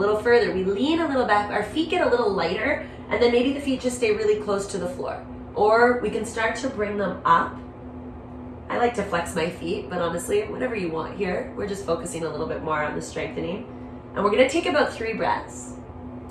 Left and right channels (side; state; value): both; identical; correlation 1.00